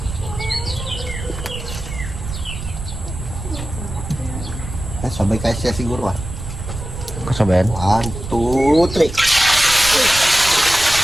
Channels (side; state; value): right; noise; rumble, 9 dB below the sound